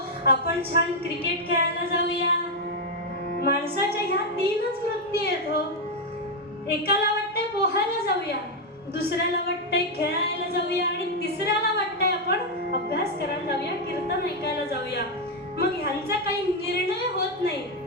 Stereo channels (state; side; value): normal; both; correlation 0.02